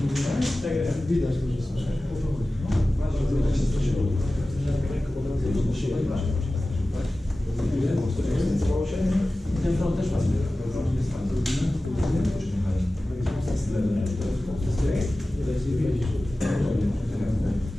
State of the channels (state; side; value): normal; both; correlation 0.96